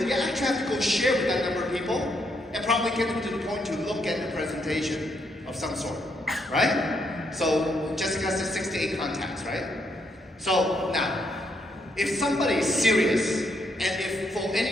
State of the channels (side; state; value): both; normal; correlation 0.76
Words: actually have to go share with that number of people and probably get them to the point to look at the presentation of some sort, right? So Jessica said 6 to 8 contacts, right? So now, if somebody is serious, and if for